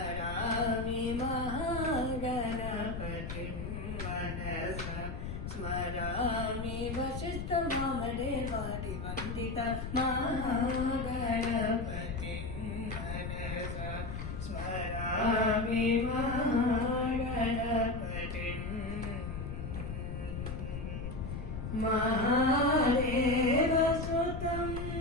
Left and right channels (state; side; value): noise; left; rumble, 5 dB below the sound